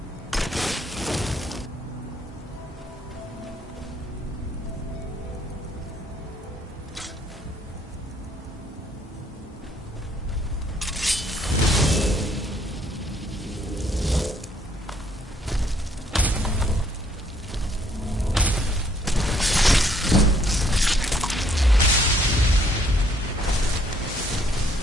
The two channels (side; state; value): both; normal; correlation 0.66